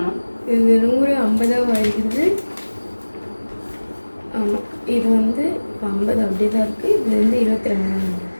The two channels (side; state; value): both; inverted; correlation -1.00